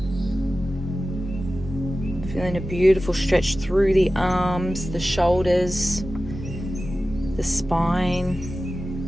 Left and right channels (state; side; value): normal; both; correlation 0.95